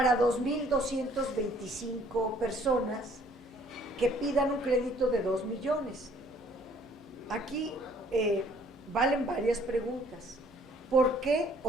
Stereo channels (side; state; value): both; normal; correlation 0.59